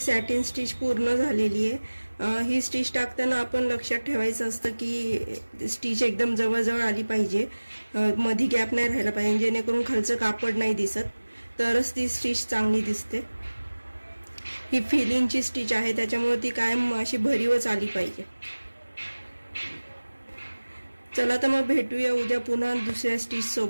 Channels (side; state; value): both; inverted; correlation -1.00